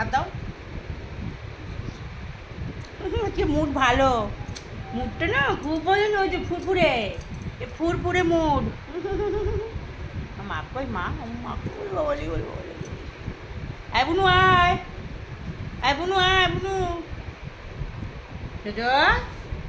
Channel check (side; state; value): both; identical; correlation 1.00